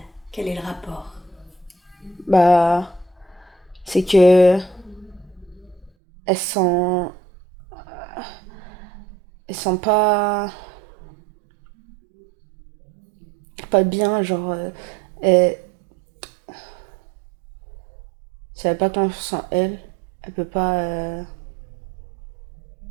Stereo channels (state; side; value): drops out; left; at 5.9 s